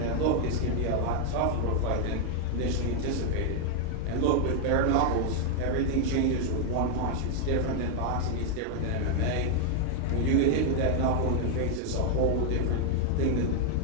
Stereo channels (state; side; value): different; both; correlation 0.00